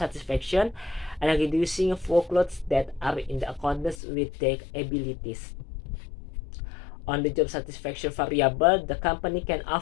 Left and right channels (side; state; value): right; drops out; at 4.0 s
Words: and reducing workloads that are in accordance with their abilities. On the job satisfaction variable, the company can